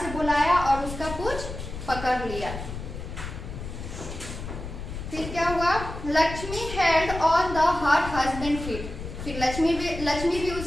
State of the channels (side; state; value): left; noise; rumble, 8 dB below the sound